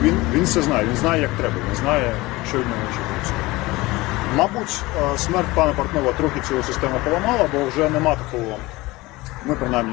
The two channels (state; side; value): quieter; right; 20.9 dB